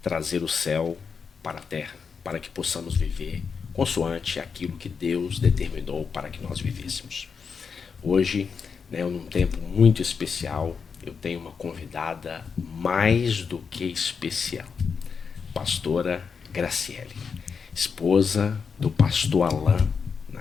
trazer o céu para a terra, para que possamos viver consoante aquilo que Deus determinou para que nós vivêssemos. Hoje, num tempo muito especial, eu tenho uma convidada mais do que especial, pastora Graciele, esposa do pastor Alain,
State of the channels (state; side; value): quieter; right; 5.9 dB